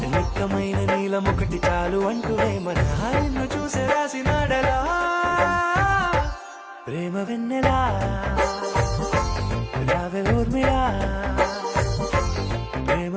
నిక్కమైన నీలమొకటి చాలు అంటూనే మన నిన్ను చూసే రాసినాడలా ప్రేమ వెన్నెలా రావే ఊర్మిళా ప్రేమ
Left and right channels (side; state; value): both; identical; correlation 1.00